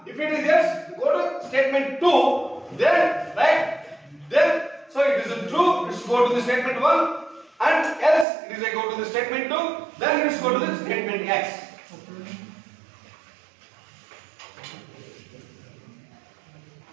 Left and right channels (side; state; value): left; drops out; at 8.2 s